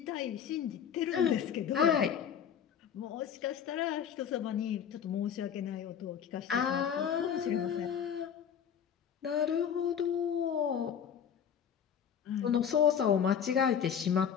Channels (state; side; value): quieter; right; 8.2 dB